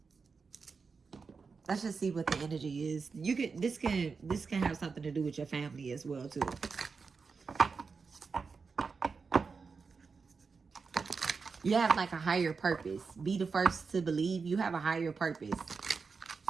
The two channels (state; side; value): quieter; left; 5.0 dB